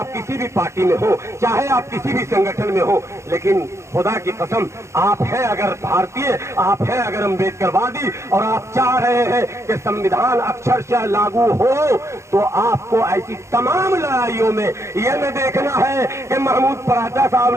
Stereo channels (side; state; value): left; late; 0.14 ms